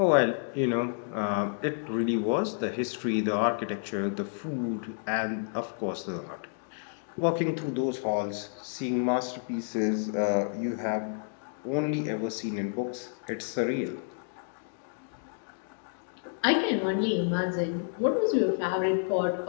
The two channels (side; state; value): right; silent; digital silence